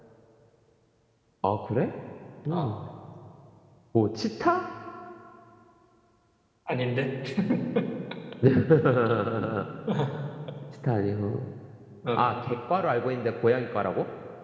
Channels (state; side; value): identical; both; correlation 1.00